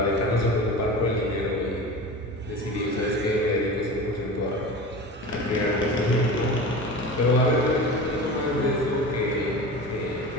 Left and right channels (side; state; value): both; normal; correlation 0.32